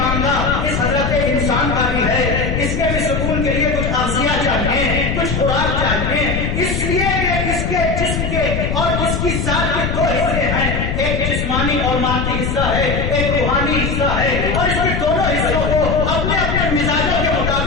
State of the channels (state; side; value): noise; left; rumble, 1 dB below the sound